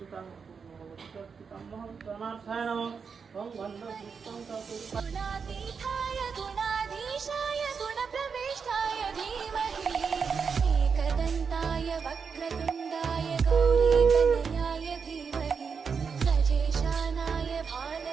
गुणातीताय गुणाधीशाय गुणप्रविष्टाय धीमहि एकदन्ताय वक्रतुण्डाय गौरीतनयाय धीमहि गजेशानाय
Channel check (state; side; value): quieter; left; 5.9 dB